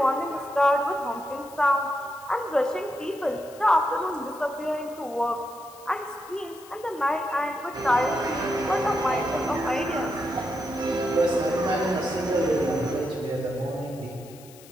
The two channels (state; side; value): noise; left; hiss, 21 dB below the sound